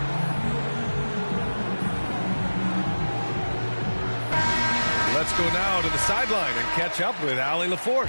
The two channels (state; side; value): inverted; both; correlation -1.00